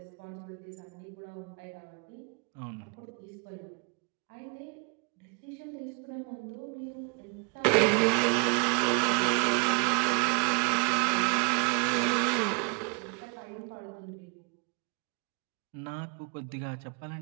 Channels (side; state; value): left; quieter; 35.1 dB